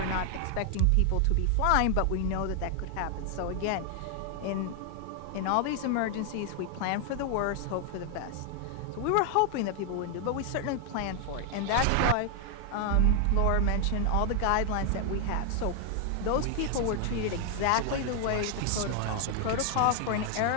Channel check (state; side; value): different; both; correlation 0.00